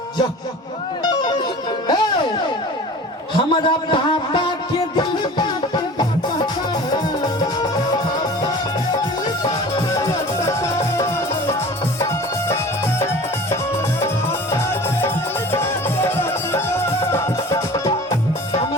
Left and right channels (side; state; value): both; normal; correlation 0.41